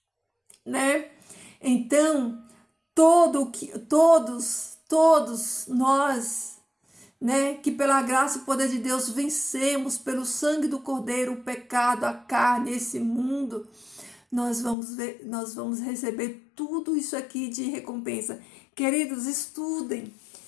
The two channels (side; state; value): right; drops out; at 14.8 s